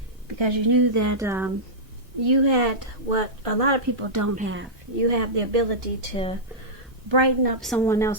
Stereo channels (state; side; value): normal; both; correlation -0.12